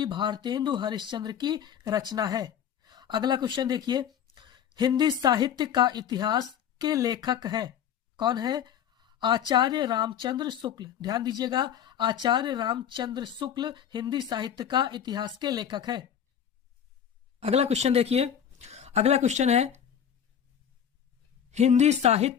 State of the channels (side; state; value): right; quieter; 9.0 dB